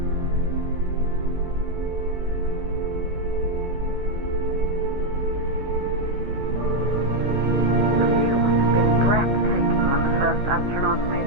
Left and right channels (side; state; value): left; late; 15 ms